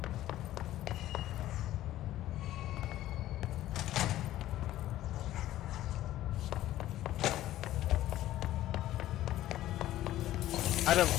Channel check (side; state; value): right; quieter; 14.1 dB